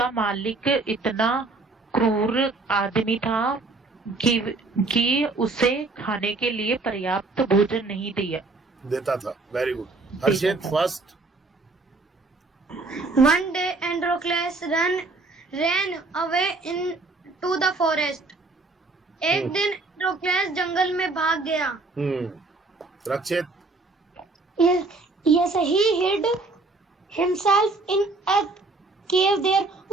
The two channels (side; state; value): left; quieter; 3.5 dB